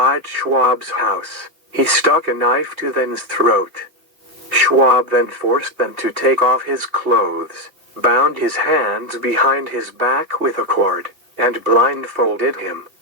Schwab's house, he stuck a knife to Dan's throat. Schwab then forced Dan to take off his clothes, bound his hands behind his back with a cord, and blindfolded him.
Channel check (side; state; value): left; late; 2.5 ms